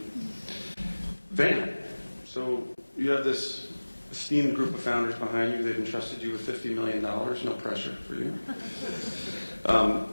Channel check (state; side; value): inverted; both; correlation -1.00